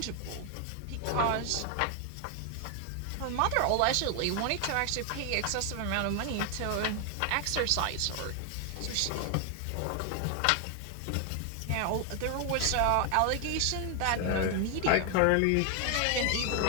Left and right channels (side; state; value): both; different; correlation 0.00